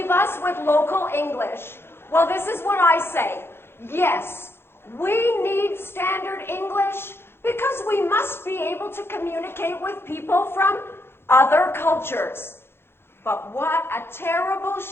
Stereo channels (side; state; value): right; late; 0.11 ms